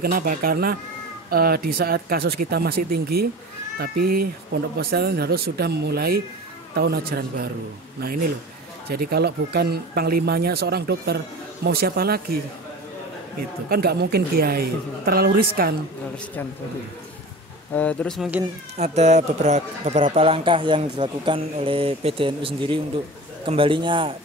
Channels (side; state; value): both; normal; correlation 0.34